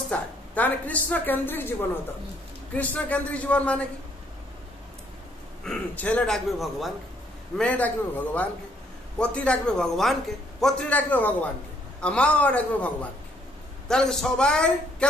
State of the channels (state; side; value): normal; both; correlation 0.67